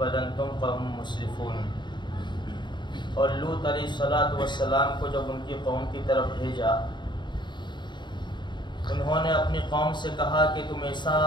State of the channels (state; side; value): late; right; 0.22 ms